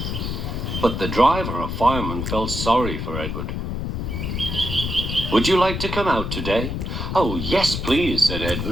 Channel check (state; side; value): noise; left; rumble, 3 dB below the sound